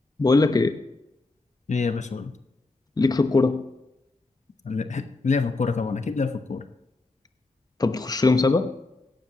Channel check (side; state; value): right; quieter; 3.3 dB